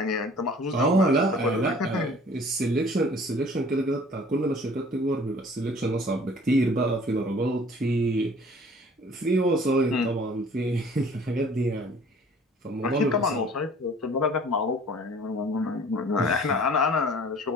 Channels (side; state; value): both; normal; correlation 0.51